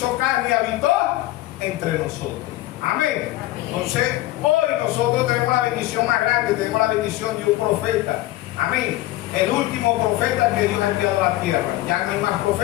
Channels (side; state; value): right; quieter; 16.8 dB